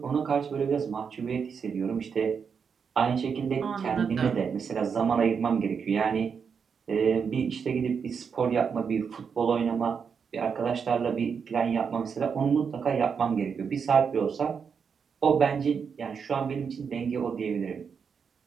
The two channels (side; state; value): left; quieter; 6.4 dB